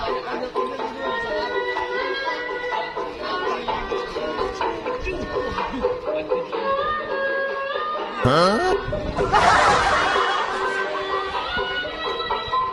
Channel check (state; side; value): identical; both; correlation 1.00